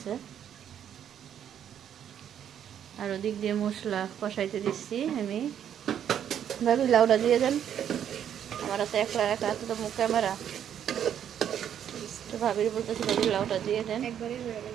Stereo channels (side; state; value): left; quieter; 9.4 dB